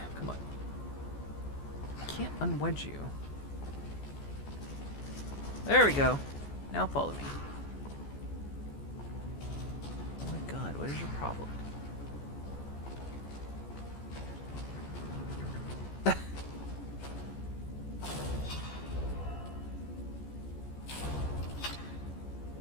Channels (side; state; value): right; late; 14 ms